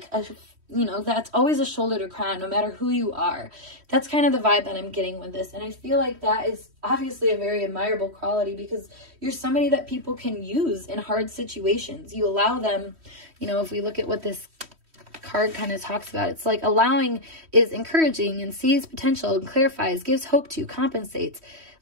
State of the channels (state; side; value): late; left; 3.1 ms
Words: you know, that's always a shoulder to cry on, no matter who you are. That's kind of the vibe that I'm getting with this. And I feel like that is obviously a very admirable quality, because you're somebody that people can use in hard situations. You allow them, you know, if we look at what this card kind of talks about, it's like allowing is encouraging and sees potential and clarifies, gives hope to, compensates,